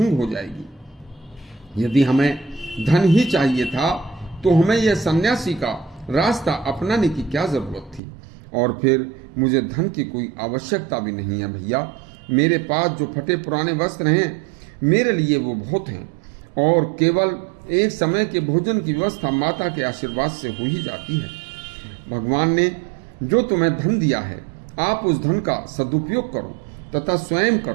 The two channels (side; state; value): left; drops out; at 8.0 s